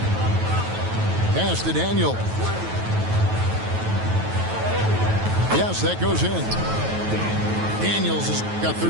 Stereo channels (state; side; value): late; left; 9.2 ms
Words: Pass to Daniel. Yes, that goes in. Daniels has got